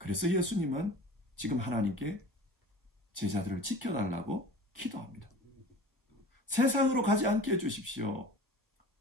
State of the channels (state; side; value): normal; both; correlation 0.40